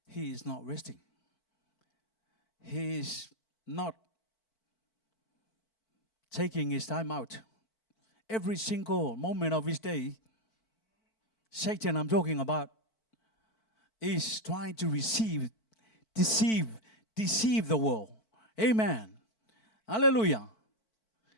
He is not resting. He is not taking his time out. Every single moment of his day, Satan I'm talking about, is trying to deceive the world. Amen. Hallelujah.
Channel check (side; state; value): right; late; 4.5 ms